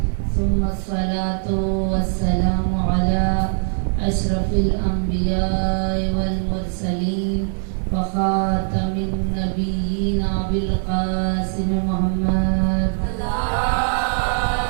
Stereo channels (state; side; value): silent; left; digital silence